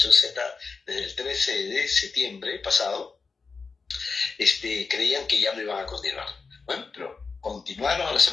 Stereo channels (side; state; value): right; quieter; 4.7 dB